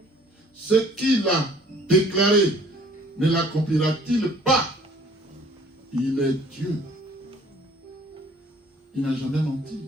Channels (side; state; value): both; normal; correlation 0.55